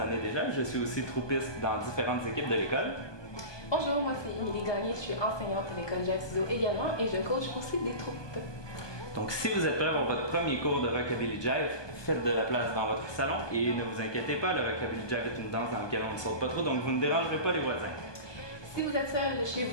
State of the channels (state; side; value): late; right; 1.2 ms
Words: années déjà. Je suis aussi troupiste dans différentes équipes de l'école. Bonjour, moi c'est Émilie Gagné, je suis enseignante à l'école Jive Studio également et je coach aussi des troupes. Donc si vous êtes prêts pour votre premier cours de Rockabilly Jive, faites de la place dans votre salon et ne vous inquiétez pas, le Rockabilly Jive est une danse dans laquelle on ne saute pas trop, donc vous ne dérangerez pas les voisins. Si vous êtes seul chez